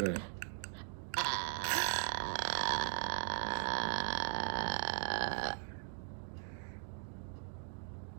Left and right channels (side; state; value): left; silent; digital silence